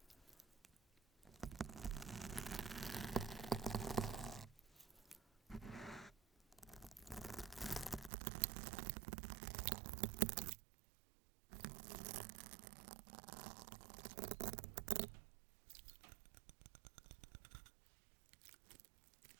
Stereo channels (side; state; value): left; drops out; at 8.1 s